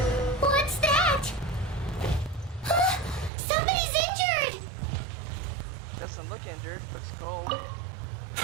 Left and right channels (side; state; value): left; drops out; at 3.3 s